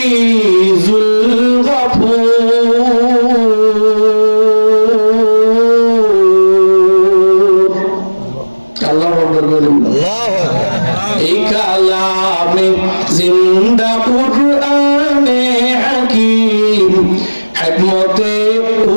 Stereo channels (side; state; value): both; inverted; correlation -1.00